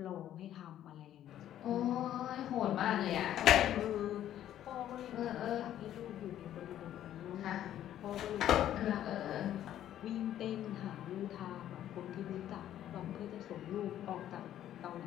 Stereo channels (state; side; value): quieter; right; 11.6 dB